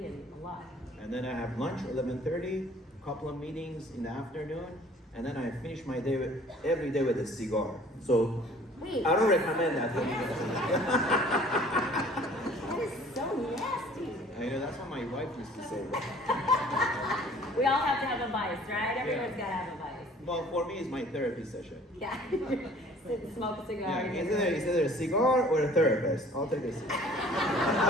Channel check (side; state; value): both; normal; correlation 0.52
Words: and a lot. And then I have lunch 11:30, couple of meetings in the afternoon, and then I finish my day every day with a cigar. So Wait. I don't recommend that. That is so nasty. I know that's what my wife used to say. We all have to have a vice, right? Everyone's got to have a vice. Well, for me, it's my therapy session. Yeah. Sit and smoke a cigar. Yeah, it's either a cigar or a therapist. I'll take a cigar.